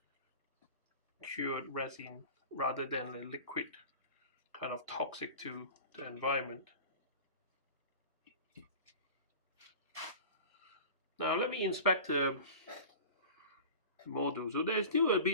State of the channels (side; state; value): both; inverted; correlation -0.36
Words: cured resin rather than a liquid kind of toxic to the environment. Now let me inspect the model. So there's still a